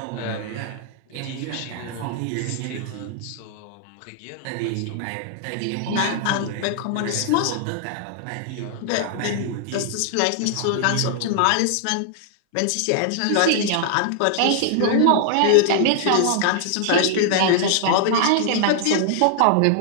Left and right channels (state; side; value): different; both; correlation 0.00